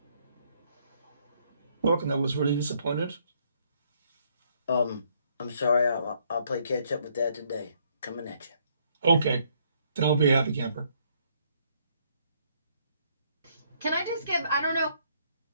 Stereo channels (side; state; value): both; inverted; correlation -0.69